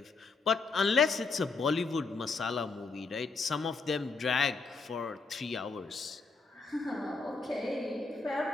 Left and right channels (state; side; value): quieter; right; 4.2 dB